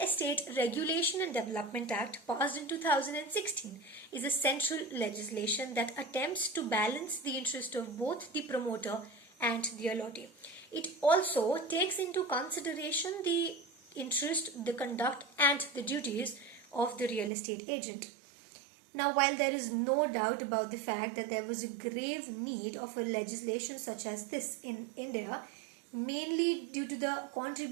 Estate Regulation and Development Act, passed in 2016, is a central legislation that attempts to balance the interest of both the promoter and the allottee. It also takes into consideration the interest, the conduct, and the duties of the real estate agent. Now, while there is no doubt about the fact that there was a grave need of a legislation such as this in India, mainly due to the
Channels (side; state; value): left; drops out; at 17.3 s